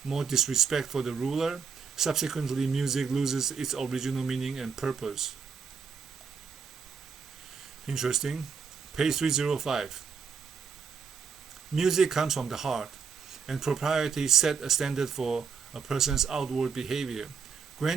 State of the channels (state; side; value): quieter; left; 6.0 dB